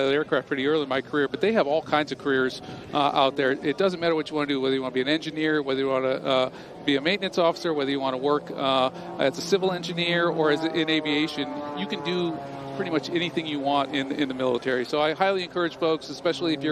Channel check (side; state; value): both; identical; correlation 1.00